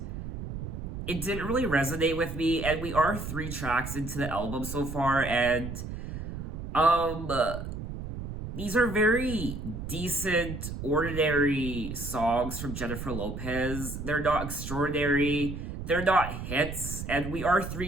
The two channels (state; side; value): noise; right; rumble, 7 dB below the sound